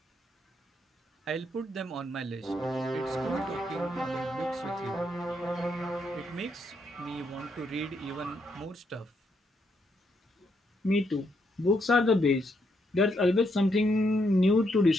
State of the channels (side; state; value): both; normal; correlation 0.77